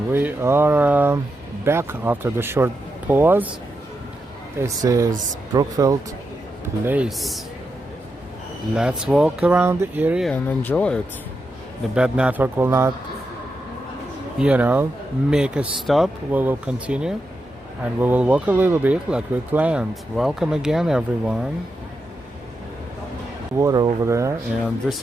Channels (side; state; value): both; normal; correlation 0.86